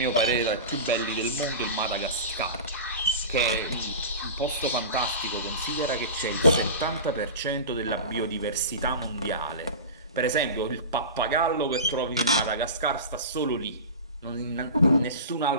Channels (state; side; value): inverted; both; correlation -0.30